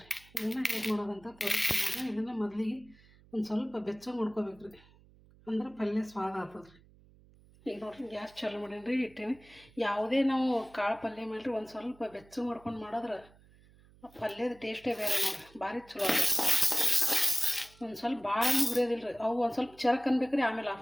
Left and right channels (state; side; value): noise; right; hum, 26 dB below the sound